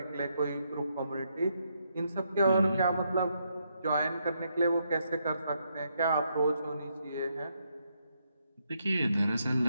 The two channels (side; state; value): both; inverted; correlation -0.78